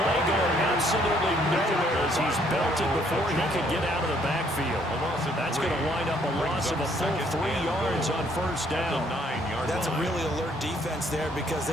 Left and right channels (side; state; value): both; normal; correlation 0.66